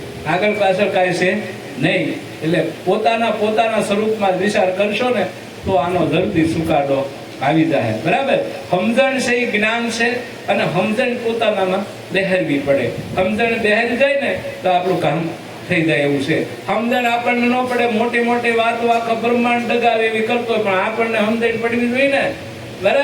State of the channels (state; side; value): identical; both; correlation 1.00